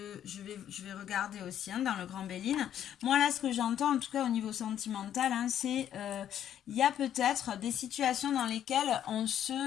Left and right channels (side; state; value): right; quieter; 10.3 dB